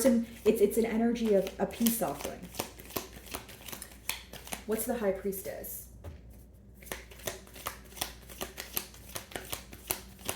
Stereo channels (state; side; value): identical; both; correlation 1.00